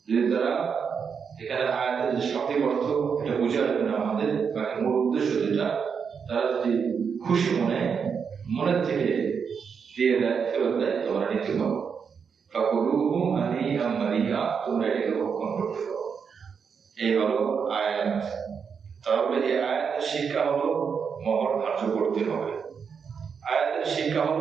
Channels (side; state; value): left; quieter; 6.4 dB